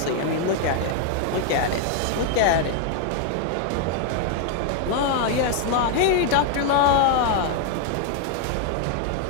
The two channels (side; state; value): both; different; correlation 0.00